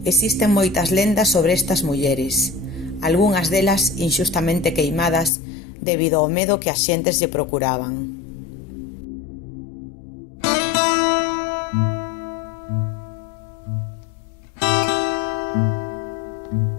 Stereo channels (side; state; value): right; drops out; at 5.3 s